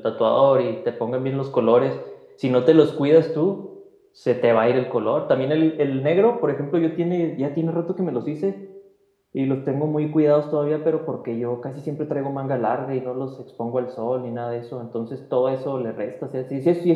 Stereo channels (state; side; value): identical; both; correlation 1.00